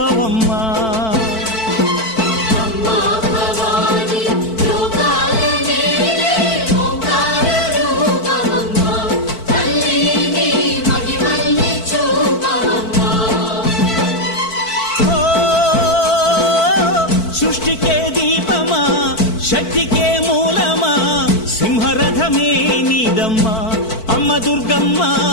సృష్టికే దీపమా శక్తికే మూలమా సింహరథమే నీదమ్మా అమ్మ దుర్గమ్మ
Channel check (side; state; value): right; late; 4.5 ms